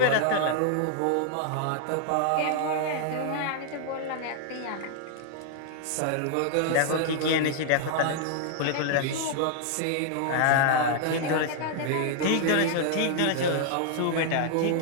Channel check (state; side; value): different; both; correlation 0.00